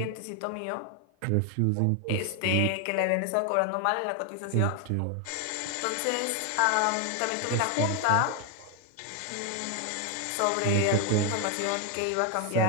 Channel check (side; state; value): both; different; correlation 0.01